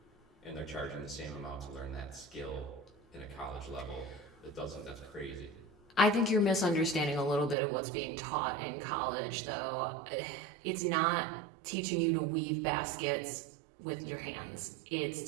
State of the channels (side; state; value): left; drops out; at 7.6 s